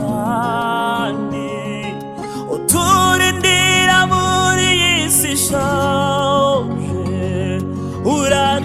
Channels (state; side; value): identical; both; correlation 1.00